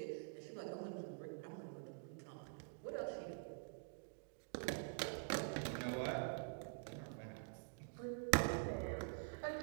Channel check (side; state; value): left; silent; digital silence